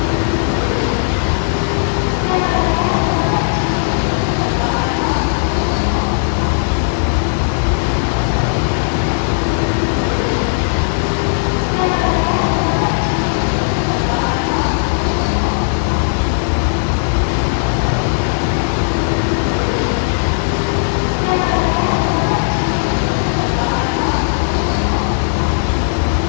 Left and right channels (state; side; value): silent; right; digital silence